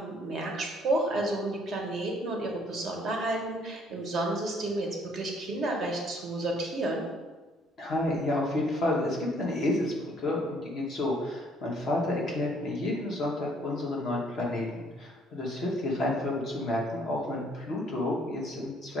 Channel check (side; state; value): both; normal; correlation 0.63